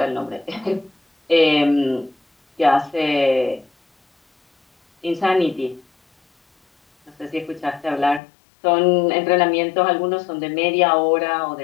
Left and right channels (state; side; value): drops out; right; at 8.2 s